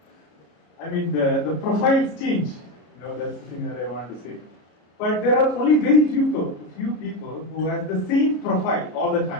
I mean, the profiles change. That's the thing that I want to say. But there are only very few people who have the same profile all the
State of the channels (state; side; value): late; right; 33 ms